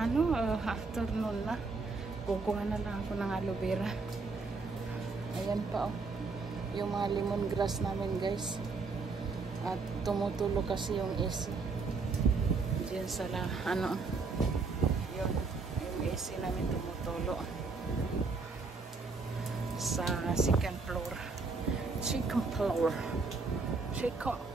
afternoon na, kukuha na lang ako ng aloe vera. Ayan pa yung mga lemongrass namin guys, at tumutulo kasi yung AC diyan sa yung AC namin tumutulo sa second floor.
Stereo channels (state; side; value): quieter; left; 4.2 dB